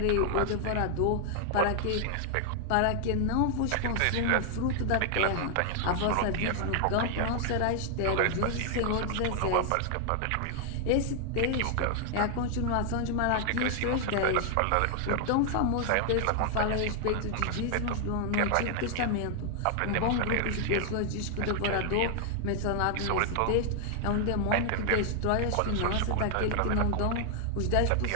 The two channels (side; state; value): both; different; correlation 0.00